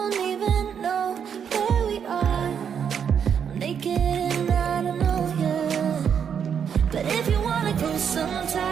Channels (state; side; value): quieter; left; 7.6 dB